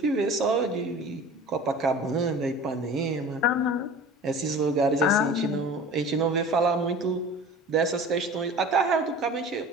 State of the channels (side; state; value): both; normal; correlation 0.40